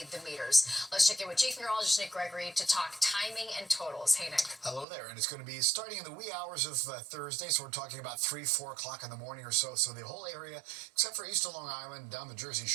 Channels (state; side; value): drops out; left; at 4.9 s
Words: the meters. Let's check in with Chief Meteorologist Nick Gregory to talk timing and totals. Hey, Nick. Hello there, and it's going to be starting in the wee hours of Thursday, so we're talking about 3-4 o'clock in the morning or so. So the whole area, except for east of Long Island, down the Jersey